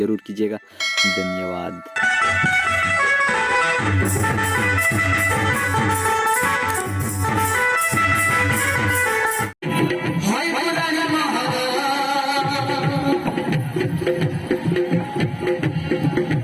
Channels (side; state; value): both; identical; correlation 1.00